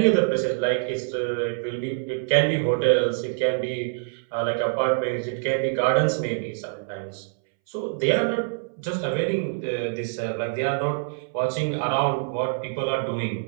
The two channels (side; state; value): left; silent; 62 dB below the other